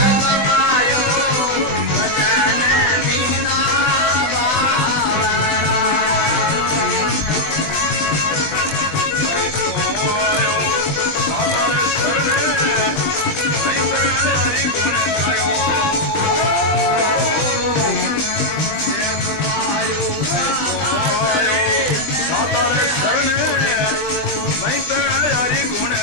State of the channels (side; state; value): right; late; 20 ms